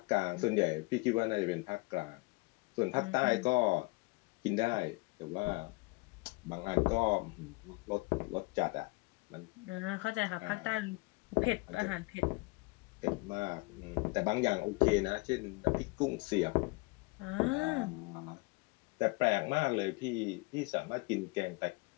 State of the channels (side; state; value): right; quieter; 25.6 dB